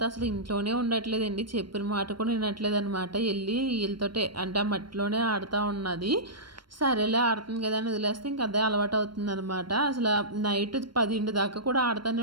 అసలు ఇంట్లోనే ఉండట్లేదండి. చెప్పిన మాట కూడా వినట్లేదు అనమాట. వెళ్ళి వీళ్ళతోటే అంటే ఆ మట్టిలోనే ఆడుతూ ఉన్నది. సరేలే ఆడుతుంది కదా అని వదిలేస్తే ఇంక అదే అలవాటు అవుతుందనమాట. అసలు నైట్ 10 దాకా కూడా ఆడుతూనే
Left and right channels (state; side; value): late; left; 0.72 ms